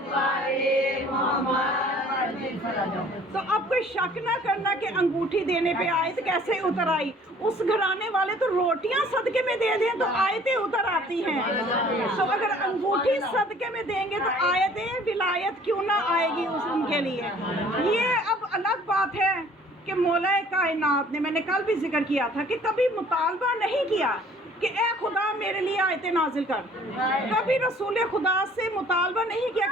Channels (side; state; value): both; normal; correlation 0.54